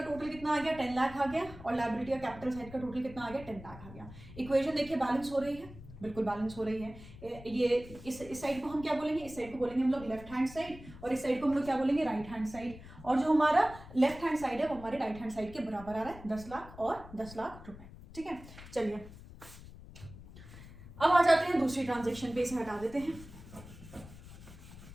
टोटल कितना आ गया, 10 लाख आ गया, और लायबिलिटी या कैपिटल साइड का टोटल कितना आ गया, 10 लाख आ गया। इक्वेशन देखिए बैलेंस हो रही है, बिल्कुल बैलेंस हो रही है। ये इस साइड को हम क्या बोलेंगे, इस साइड को बोलेंगे हम लोग लेफ्ट हैंड साइड, और इस साइड को हम लोग क्या बोलेंगे, राइट हैंड साइड। और जो हमारा लेफ्ट हैंड साइड है वो हमारे राइट हैंड साइड के बराबर आ रहा है, 10 लाख और 10 लाख रुपए, ठीक है। चलिए अब आ जाते हैं दूसरी ट्रांजैक्शन पे, इसे हटा देते हैं।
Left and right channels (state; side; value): noise; left; rumble, 16 dB below the sound